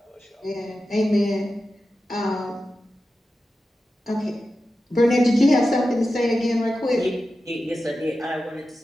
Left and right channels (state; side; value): normal; both; correlation 0.92